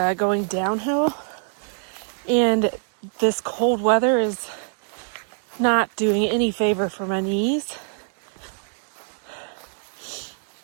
going downhill, and this cold weather is not doing any favor for my knees.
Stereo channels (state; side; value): silent; left; 62 dB below the other